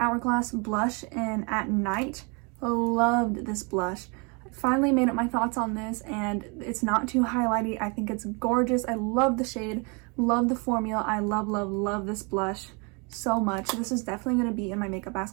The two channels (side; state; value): left; quieter; 32.2 dB